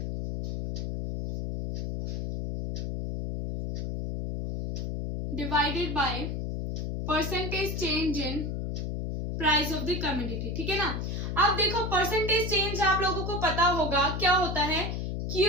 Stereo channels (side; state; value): left; noise; hum, 3 dB below the sound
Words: divided by percentage change in price of the commodity, ठीक है ना। अब देखो परसेंटेज चेंज आप लोगों को पता होगा क्या होता है,